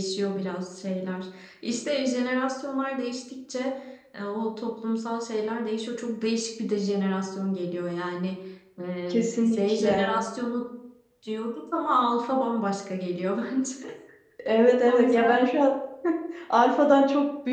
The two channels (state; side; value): identical; both; correlation 1.00